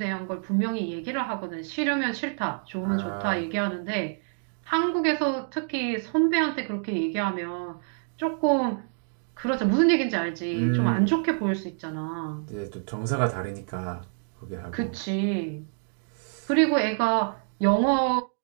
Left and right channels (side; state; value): left; silent; digital silence